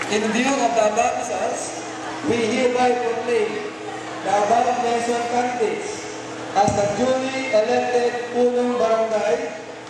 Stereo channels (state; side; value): identical; both; correlation 1.00